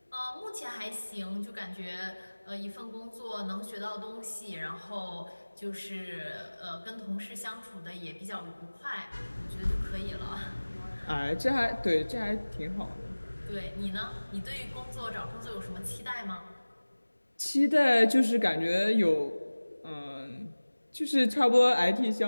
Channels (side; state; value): both; inverted; correlation -1.00